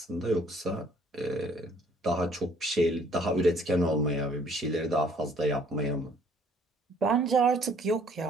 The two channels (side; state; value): both; normal; correlation 0.60